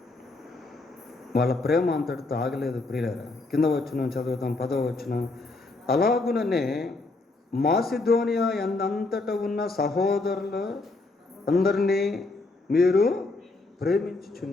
వాళ్ళ ప్రేమ అంతటితో ఆగలేదు ప్రియులారా. కింద వచనం చదువుతాం, 10వ వచనం. అలాగుననే మాసిదోనియా ఎందంతట ఉన్న సహోదరులు అందరినీ మీరు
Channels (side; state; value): right; quieter; 3.3 dB